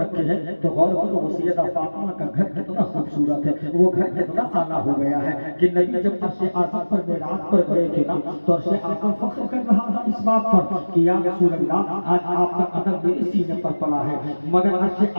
ہیں تو غور کرو وہ سیدہ فاطمہ کا گھر کتنا خوبصورت ہے، وہ گھر کتنا اعلیٰ ہو گیا ہے کہ نبی جب عرش اعظم پر معراج پر گئے تھے نا تو عرش اعظم فخر کر رہا تھا اس بات پر کہ یا رسول اللہ آج آپ کا قدم میرے سینے پر پڑا ہے، مگر عرش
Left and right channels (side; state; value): both; inverted; correlation -1.00